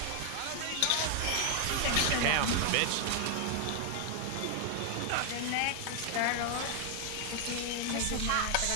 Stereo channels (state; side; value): different; both; correlation 0.00